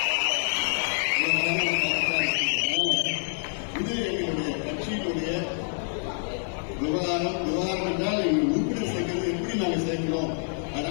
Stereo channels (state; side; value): silent; right; 60 dB below the other